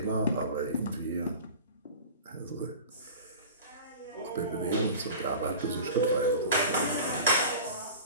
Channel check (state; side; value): inverted; both; correlation -0.37